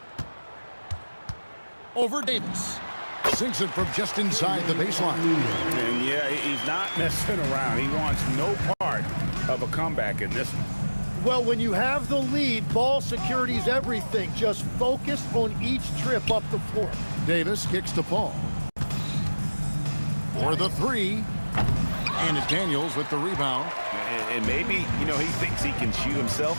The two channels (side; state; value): both; inverted; correlation -1.00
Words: Over Davis. Sinks it from just inside the baseline. And yeah, he's not messing around. He wants no part of a comeback in this one. Well, when you have the lead, ball security is everything. Just focus on each trip up the floor. Davis kicks to Paul. For the three. And it's Daniels with the rebound. And maybe, you know, he thinks he can shoot himself